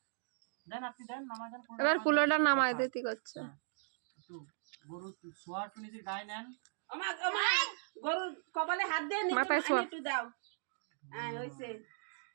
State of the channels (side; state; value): left; silent; digital silence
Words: দেন আপনি দেন, নামাই দেন। এবার কুলোটা নামাই দিতে করছে। একটু গরু শোয়া একটু নিজের গায়ে নেন। গরুর কপালে হাত দিয়ে মাথায় শোয়া একটু দাও। হ্যাঁ হইছে,